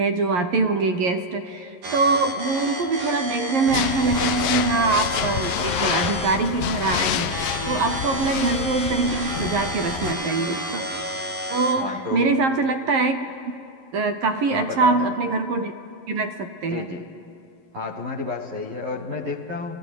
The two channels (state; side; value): late; left; 11 ms